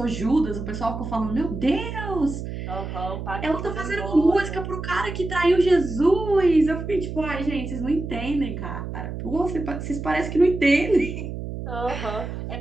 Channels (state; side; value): noise; right; hum, 7 dB below the sound